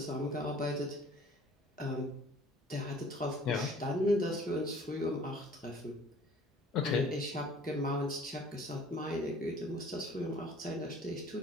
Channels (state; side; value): normal; both; correlation 0.52